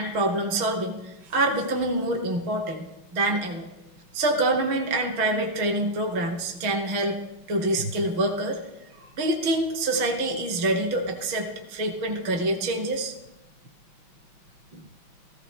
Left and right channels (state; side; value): late; left; 6.2 ms